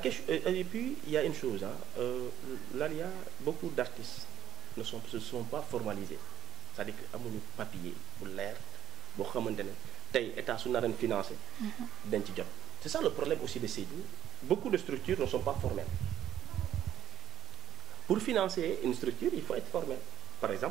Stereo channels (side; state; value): left; quieter; 11.7 dB